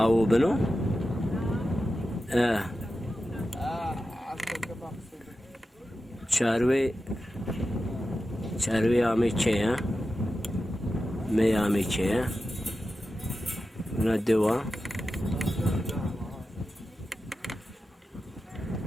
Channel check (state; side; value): normal; both; correlation 0.92